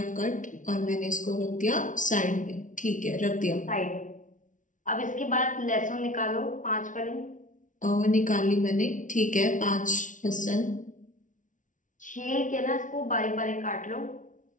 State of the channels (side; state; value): right; late; 0.37 ms